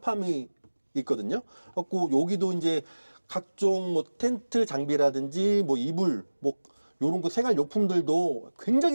있거든요. 그래갖고 여기도 이제 각종 뭐 텐트 장비라든지 뭐 이불 뭐 요런 거 생활 용품들도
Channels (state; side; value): inverted; both; correlation -1.00